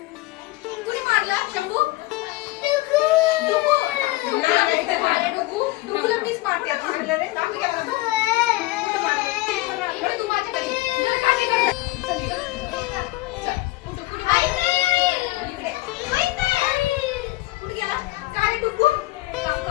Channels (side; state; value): right; quieter; 19.3 dB